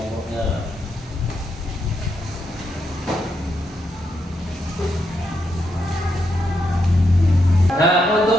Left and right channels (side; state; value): both; normal; correlation 0.81